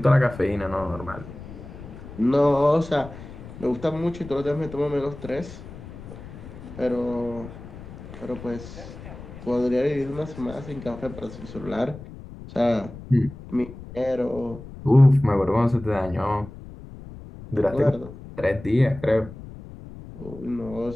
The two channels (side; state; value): left; noise; rumble, 14 dB below the sound